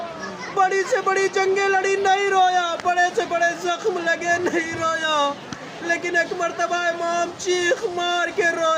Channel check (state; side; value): identical; both; correlation 1.00